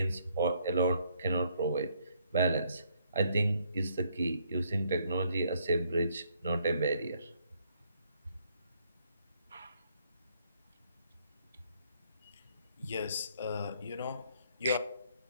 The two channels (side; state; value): both; inverted; correlation -0.69